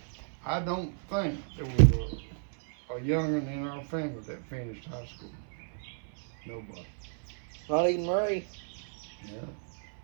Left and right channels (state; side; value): silent; left; 56 dB below the other